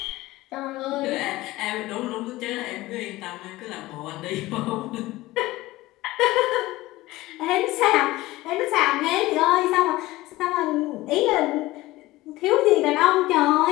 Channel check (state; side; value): quieter; right; 18.3 dB